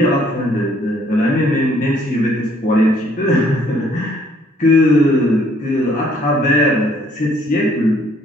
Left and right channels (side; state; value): both; normal; correlation 0.63